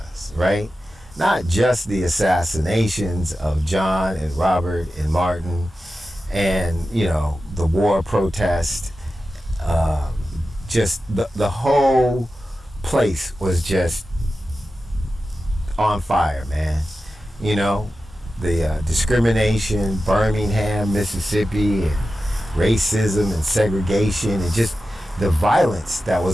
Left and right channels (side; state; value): both; normal; correlation 0.93